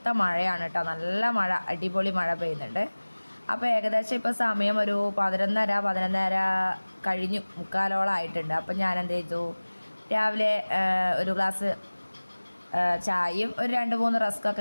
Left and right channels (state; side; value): inverted; both; correlation -1.00